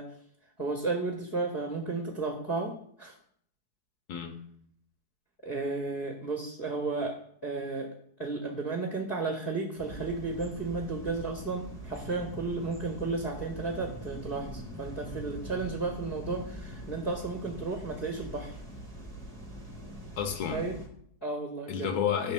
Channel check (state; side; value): late; right; 4.7 ms